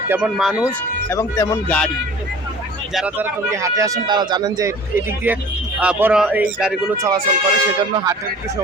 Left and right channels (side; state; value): both; normal; correlation 0.45